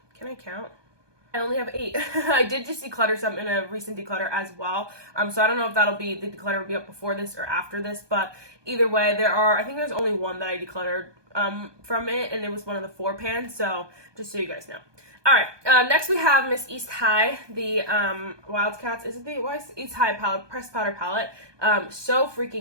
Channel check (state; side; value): late; left; 1.2 ms